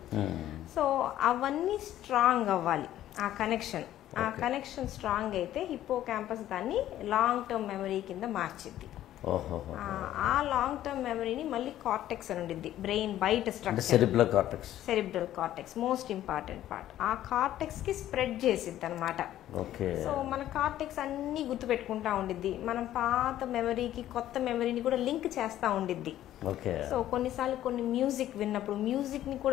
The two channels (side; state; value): right; quieter; 12.8 dB